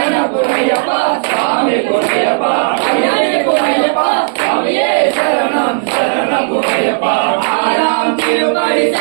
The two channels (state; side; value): silent; left; 72 dB below the other